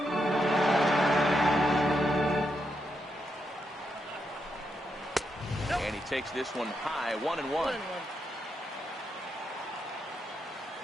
And he takes this one high, 1-1.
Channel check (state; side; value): normal; both; correlation 0.82